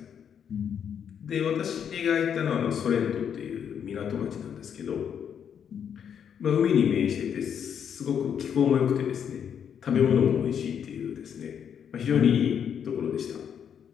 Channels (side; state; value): right; quieter; 8.1 dB